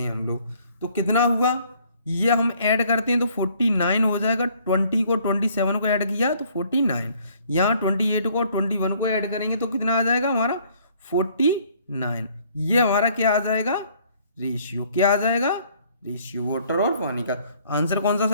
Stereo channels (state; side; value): inverted; both; correlation -0.61